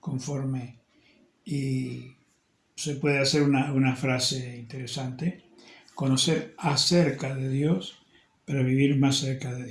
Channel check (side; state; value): both; identical; correlation 1.00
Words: y se puede hacer una frase interesante: conocer acerca de Dios para vivir más cerca de